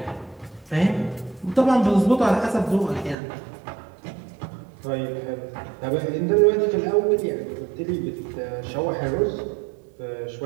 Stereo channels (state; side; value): drops out; left; at 3.2 s